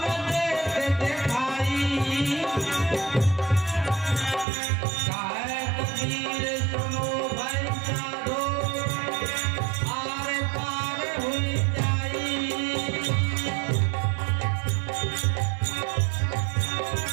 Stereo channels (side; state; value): left; drops out; at 4.5 s